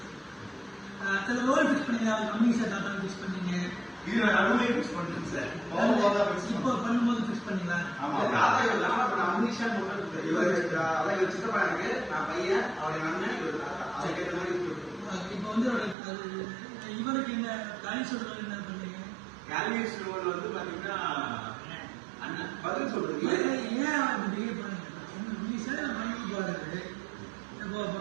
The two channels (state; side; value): drops out; left; at 16.0 s